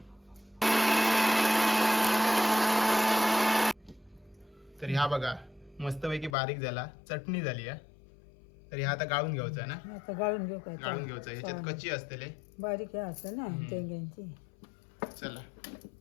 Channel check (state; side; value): drops out; right; at 6.4 s